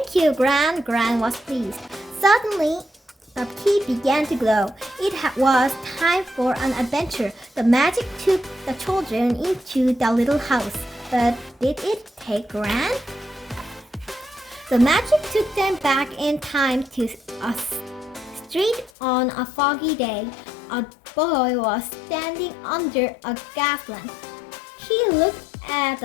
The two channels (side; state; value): right; drops out; at 18.9 s